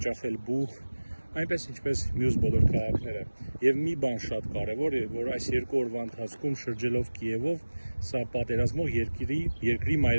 բուխ, այնպես ինչպես մյուս բոլոր քաղաքները։ Եվ մի բան շատ կարևոր է, որ այս 2 օրվա ընթացքում շրջելով Կիևով, սա պատերազմող երկրի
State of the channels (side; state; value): both; inverted; correlation -1.00